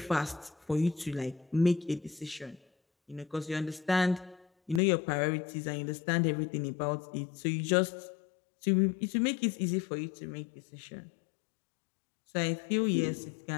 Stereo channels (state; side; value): drops out; right; at 4.8 s